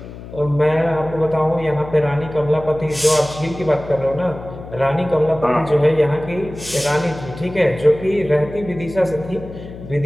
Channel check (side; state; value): left; noise; hum, 14 dB below the sound